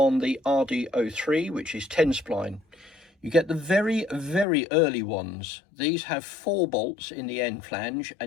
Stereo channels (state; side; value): drops out; right; at 4.5 s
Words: the RD03, which is 10 spline, you get the very, very early ones. These have 4 bolts in the end flange,